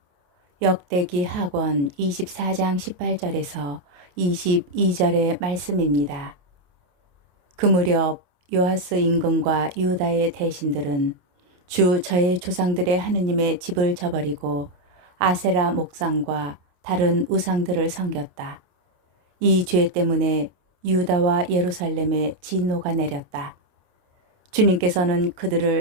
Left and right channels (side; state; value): left; late; 28 ms